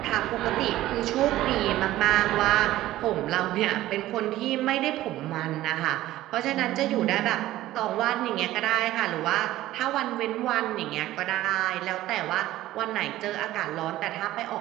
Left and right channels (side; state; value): left; quieter; 15.2 dB